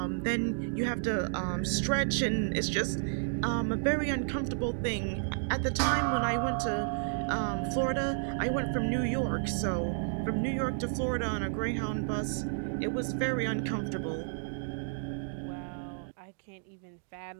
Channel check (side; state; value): left; silent; digital silence